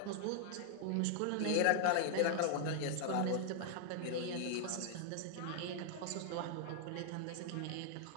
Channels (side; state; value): both; different; correlation 0.00